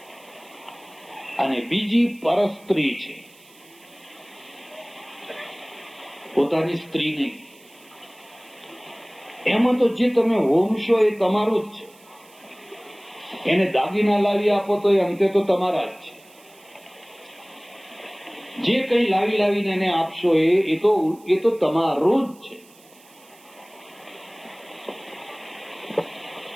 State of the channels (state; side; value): noise; right; hiss, 26 dB below the sound